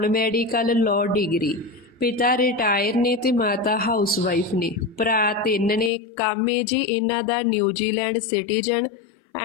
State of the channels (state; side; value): drops out; right; at 5.9 s